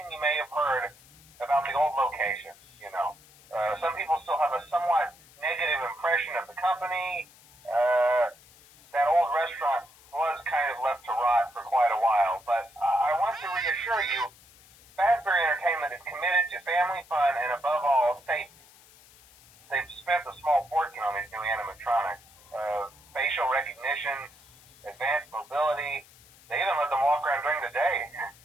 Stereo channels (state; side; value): noise; left; hiss, 25 dB below the sound